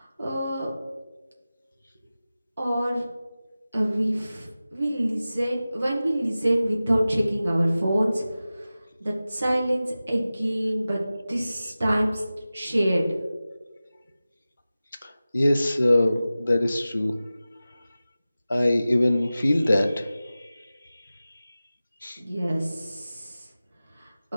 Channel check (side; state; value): both; inverted; correlation -0.96